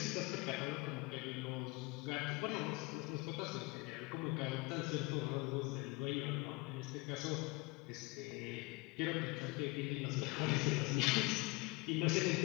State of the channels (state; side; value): quieter; right; 25.5 dB